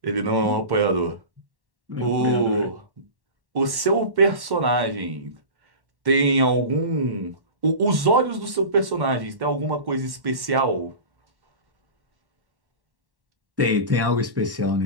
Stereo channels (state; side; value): late; left; 1.1 ms